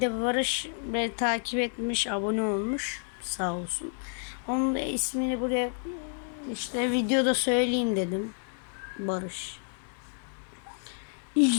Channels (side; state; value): right; silent; 58 dB below the other